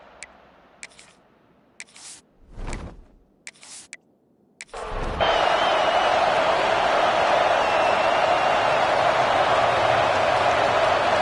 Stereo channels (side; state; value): both; identical; correlation 1.00